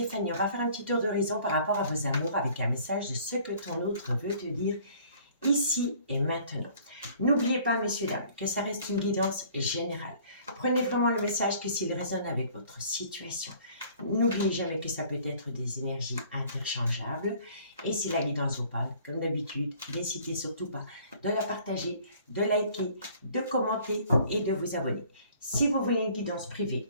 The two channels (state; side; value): inverted; both; correlation -0.54